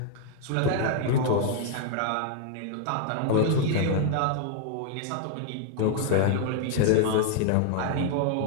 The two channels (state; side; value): different; both; correlation 0.00